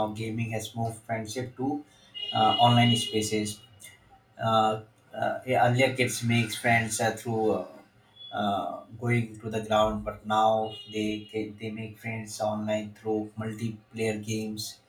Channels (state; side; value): identical; both; correlation 1.00